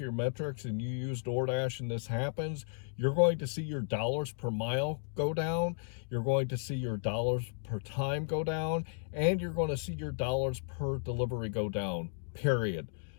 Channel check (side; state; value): right; silent; digital silence